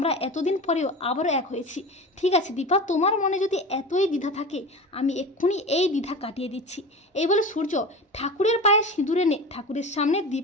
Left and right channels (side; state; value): both; normal; correlation 0.31